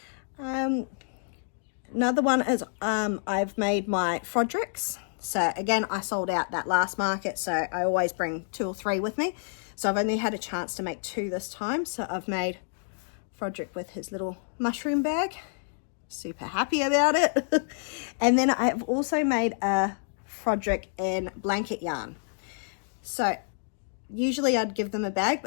Another one is I've made my Frodricks. So again, I sold out that last market, so I always bring 2 or 3 with me. So I've only had a chance to make 2 this time. So I've made Frodrick with his little mushroom bag. Super happy about it. And then I've also made a Frodrick in blanket yarn. So usually I'd give them a bag,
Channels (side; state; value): right; silent; digital silence